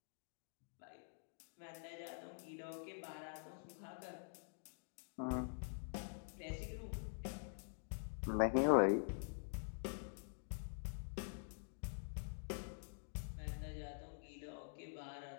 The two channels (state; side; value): silent; right; digital silence